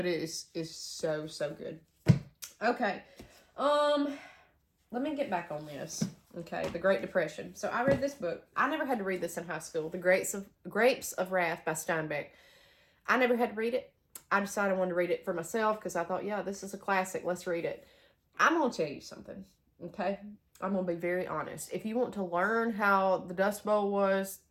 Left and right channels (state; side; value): identical; both; correlation 1.00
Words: it is so good. Okay. Let me get back on this. Okay, the Great Depression. So I read this book. I never had to read this in high school. The Grapes of Wrath by Steinbeck. I never had to read it. I decided I wanted to read it for myself because I thought, yeah, this is a classic. Let's read it. I'm going to tell you something, okay? I'm going to be very honest. If you want to learn how the Dust Bowl was,